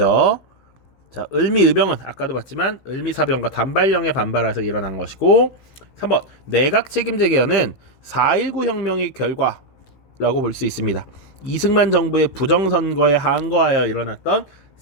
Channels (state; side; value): late; right; 15 ms